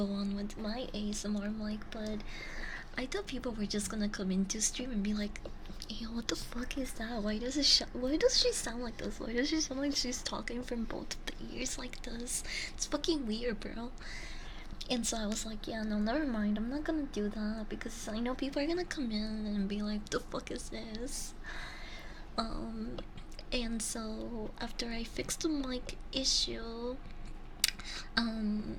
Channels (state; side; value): identical; both; correlation 1.00